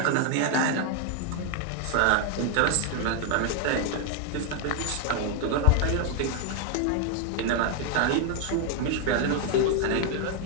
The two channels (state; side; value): different; both; correlation 0.01